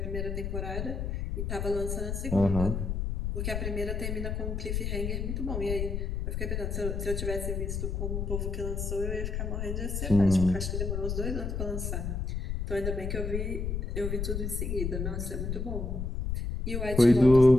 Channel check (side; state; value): left; noise; rumble, 2 dB below the sound